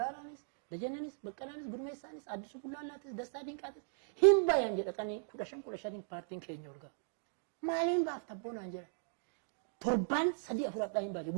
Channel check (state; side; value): silent; left; digital silence